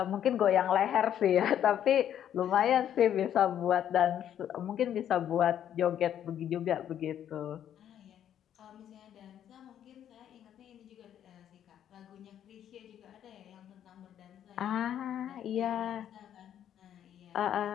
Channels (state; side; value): quieter; right; 10.2 dB